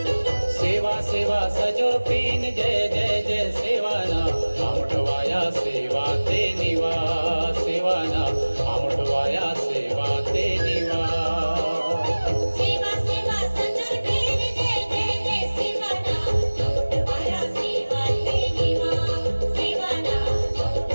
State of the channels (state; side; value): inverted; both; correlation -1.00